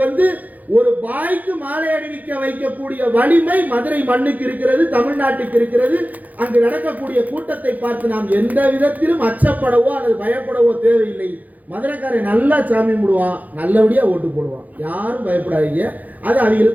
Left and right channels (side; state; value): left; late; 0.080 ms